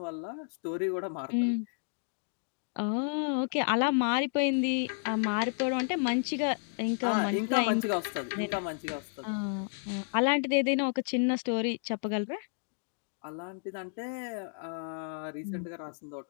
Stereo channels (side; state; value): right; silent; digital silence